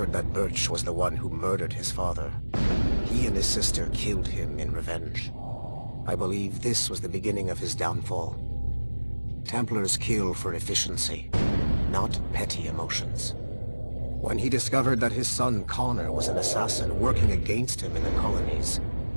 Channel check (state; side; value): inverted; both; correlation -1.00